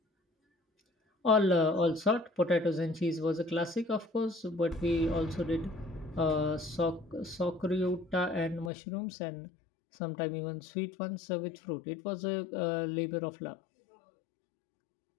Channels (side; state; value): right; drops out; at 8.7 s